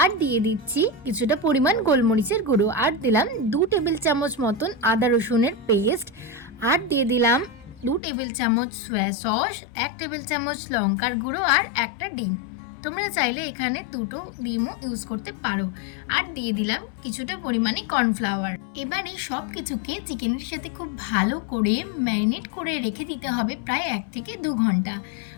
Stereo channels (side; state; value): right; drops out; at 8.0 s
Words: আর দিয়ে দিচ্ছি কিছুটা পরিমাণ গোলমরিচের গুঁড়ো, আর দিলাম 2 টেবিল চামচ মতন আদা রসুনের পেস্ট, আর দিয়ে দিলাম 2 টেবিল চামচ সয়া সস, 1 টেবিল চামচ লঙ্কার গুঁড়ো, আর একটা ডিম। তোমরা চাইলে এখানে 2টো ডিমও ইউজ করতে পারো। আর দিয়ে দিলাম কিছুটা পরিমাণে কর্নফ্লাওয়ার। এবার এই সব কিছুকে চিকেনের সাথে খুব ভালো করে ম্যারিনেট করে রেখে দিতে হবে প্রায় 1 থেকে 2 ঘন্টা।